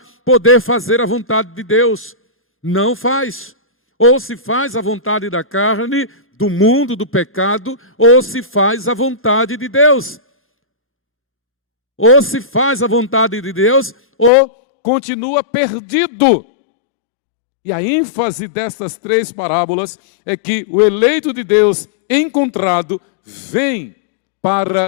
poder fazer a vontade de Deus. Não faz. Ou se faz a vontade da carne, do mundo, do pecado, ou se faz a vontade de Deus. Ou se faz a vontade de Deus, ou continua perdido. E a ênfase destas três parábolas é que o eleito de Deus encontrado vem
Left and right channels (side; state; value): right; drops out; at 14.3 s